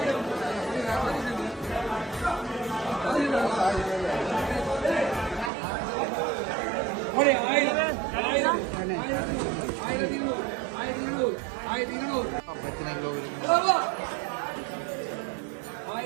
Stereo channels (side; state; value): left; drops out; at 5.5 s